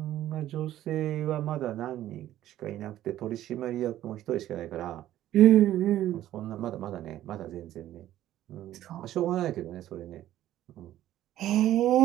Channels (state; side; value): quieter; left; 13.2 dB